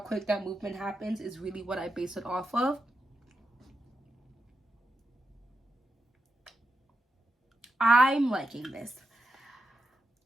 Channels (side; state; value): both; normal; correlation 0.85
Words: that movement happens is really what I base it off of. I'm liking this.